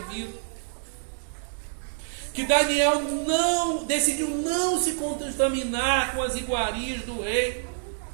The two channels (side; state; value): left; silent; digital silence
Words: que Daniel decidiu não se contaminar com as iguarias do rei.